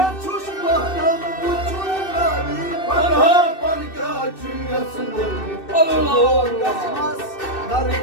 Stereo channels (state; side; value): late; right; 2.6 ms